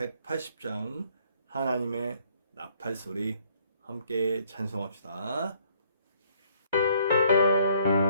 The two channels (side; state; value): both; inverted; correlation -0.65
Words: 하나님의 나팔소리 함께 찬송합시다.